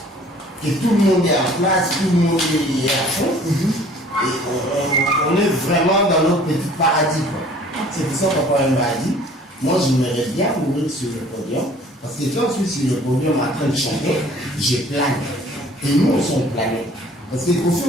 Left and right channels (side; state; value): both; normal; correlation 0.52